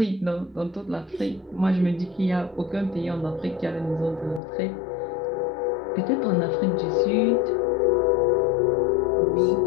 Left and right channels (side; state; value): right; drops out; at 4.4 s